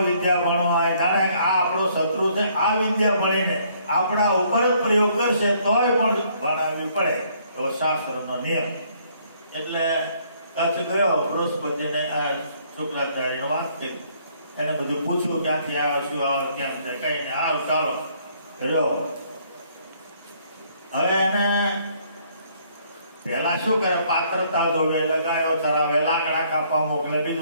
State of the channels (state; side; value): inverted; both; correlation -0.65